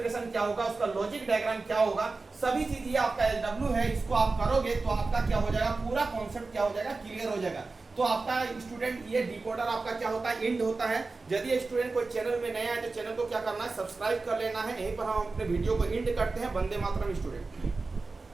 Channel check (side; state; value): left; quieter; 3.8 dB